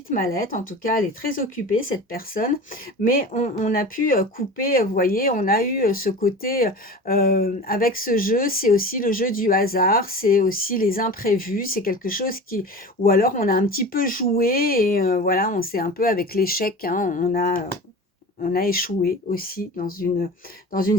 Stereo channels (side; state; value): both; normal; correlation 0.34